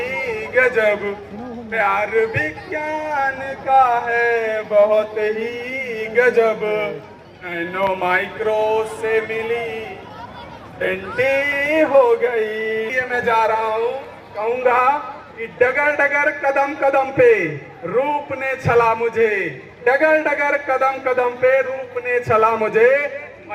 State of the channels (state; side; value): identical; both; correlation 1.00